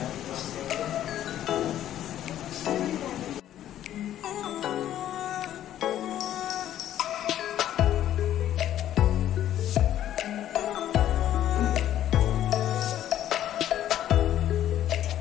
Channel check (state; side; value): quieter; right; 11.8 dB